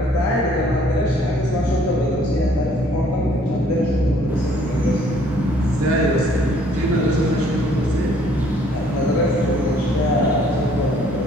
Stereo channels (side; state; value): both; normal; correlation 0.61